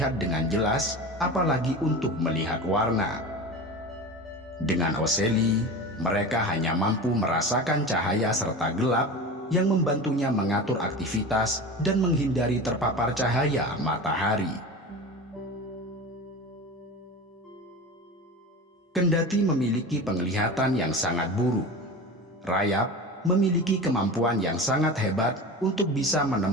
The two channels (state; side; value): normal; both; correlation 0.30